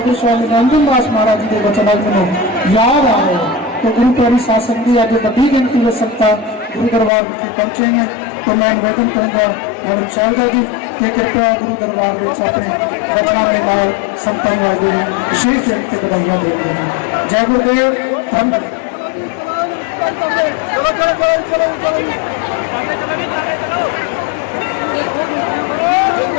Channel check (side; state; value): right; drops out; at 7.1 s